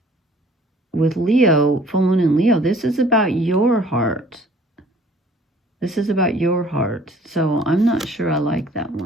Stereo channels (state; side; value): normal; both; correlation 0.54